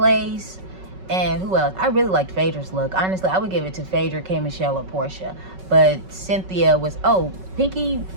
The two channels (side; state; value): left; late; 5.3 ms